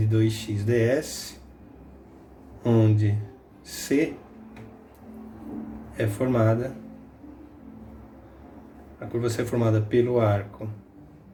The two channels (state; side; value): identical; both; correlation 1.00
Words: 2x ds, onde C é formada, a curva C é formada pelo arco